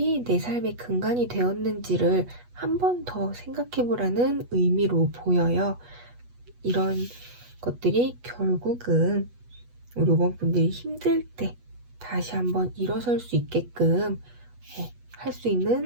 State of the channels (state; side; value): late; left; 8.2 ms